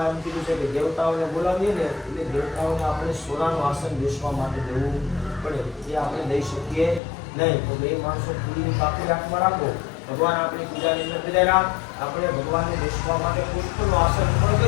એમ કીધું છે કે દેવતાઓને બોલાવીએ ને એટલે દેવતાઓને આપણે સોનાનું આસન બેસવા માટે દેવું પડે. એ આપણે દઈ શકીએ નહીં. તો બે માણસો પૂરીની પાપડી હાથમાં રાખો. ભગવાન આપણી પૂજાની અંદર પધાર્યા, આપણે ભગવાનને બેસવા માટે પુષ્પનું આસન પણ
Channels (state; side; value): drops out; right; at 7.0 s